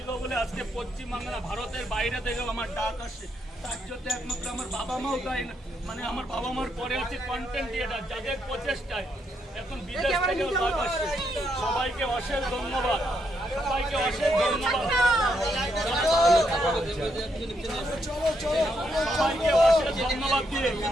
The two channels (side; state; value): both; normal; correlation 0.78